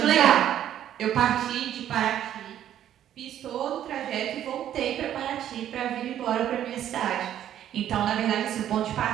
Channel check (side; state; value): left; quieter; 11.1 dB